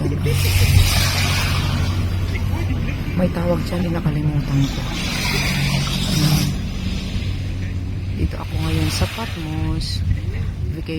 May tawag dyan, nakalimutan ko. Dito ako ngayon sa Patmos,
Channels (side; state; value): both; identical; correlation 1.00